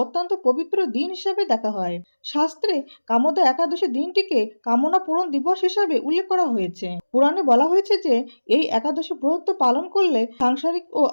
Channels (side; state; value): both; inverted; correlation -1.00